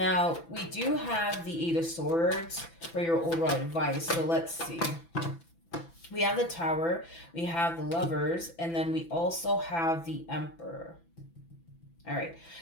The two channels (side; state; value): right; late; 6.0 ms